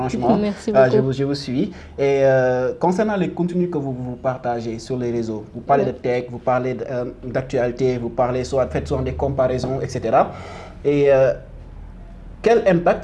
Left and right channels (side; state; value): both; identical; correlation 1.00